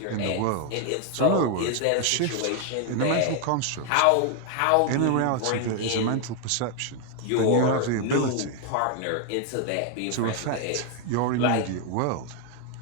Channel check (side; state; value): both; different; correlation 0.01